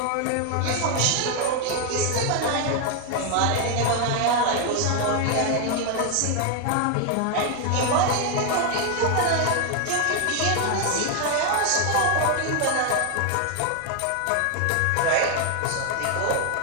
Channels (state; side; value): different; both; correlation 0.01